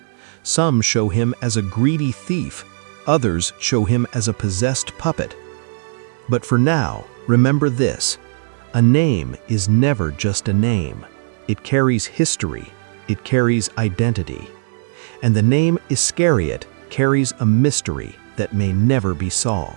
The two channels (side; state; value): left; silent; 67 dB below the other